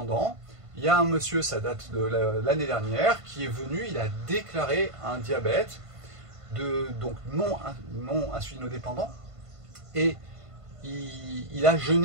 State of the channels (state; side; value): late; left; 1.5 ms